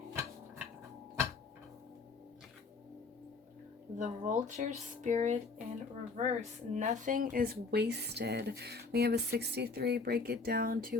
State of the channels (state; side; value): quieter; right; 4.3 dB